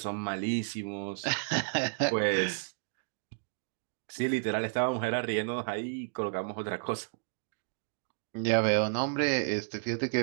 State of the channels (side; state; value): left; silent; digital silence